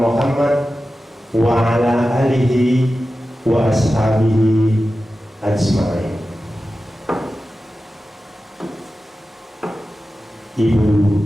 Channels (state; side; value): normal; both; correlation 0.94